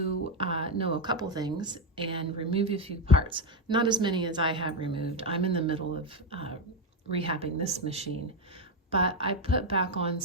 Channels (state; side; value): normal; both; correlation 0.07